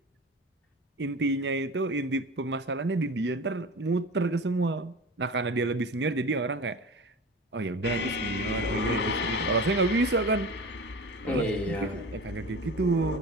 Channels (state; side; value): normal; both; correlation 0.34